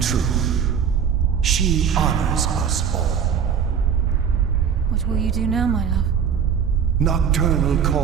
She honors us all. What will you do now, my love? Nocturnal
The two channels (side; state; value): left; quieter; 7.5 dB